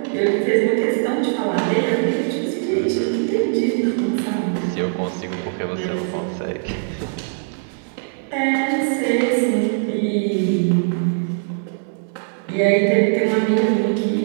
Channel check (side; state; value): left; silent; digital silence